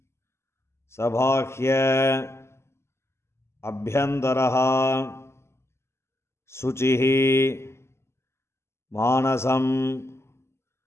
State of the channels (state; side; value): late; right; 0.13 ms